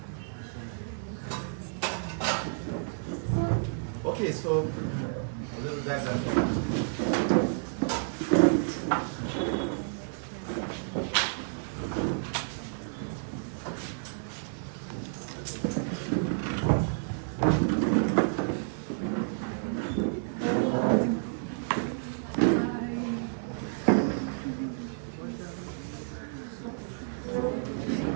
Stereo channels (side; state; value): left; silent; digital silence